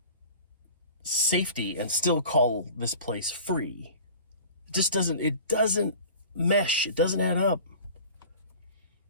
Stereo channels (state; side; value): inverted; both; correlation -0.40